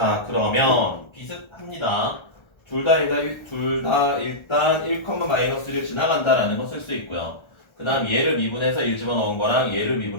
그러면 비슷합니다. 둘 다 일단 1,-1을 지나간다라는 거 쓸 수 있고요. 그 다음 얘를 미분해서 1 집어넣은 거랑 얘를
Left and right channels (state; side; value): late; right; 1.3 ms